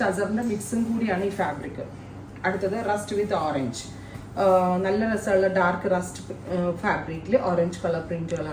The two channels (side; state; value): both; identical; correlation 1.00